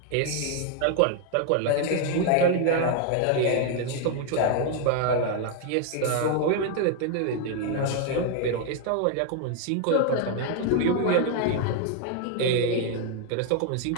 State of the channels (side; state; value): both; different; correlation 0.00